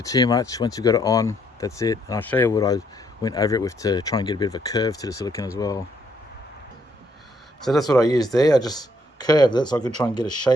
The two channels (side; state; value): both; normal; correlation 0.70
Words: too much. Once you've got it on, that's it. And I'll show you what I went over it with to try and get a bit of a curve to the silicone as well. So that's what I used there. I just curved it so I could try and get a